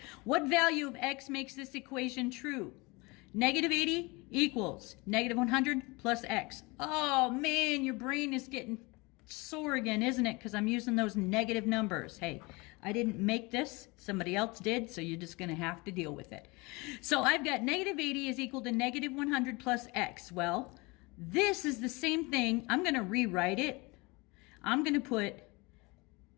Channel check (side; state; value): right; quieter; 25.4 dB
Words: What value of x makes this equation true? Negative 80 equals negative 100 plus x. Oh, man, your brain is getting sore again, isn't it? Because I'm using those negative numbers. Hey, I didn't make this. Somebody else did, so you're just going to have to deal with it. So I've got negative 80 is equal to negative 100 plus x. Well, this is the same thing. I'm going to rewrite it. I'm going to put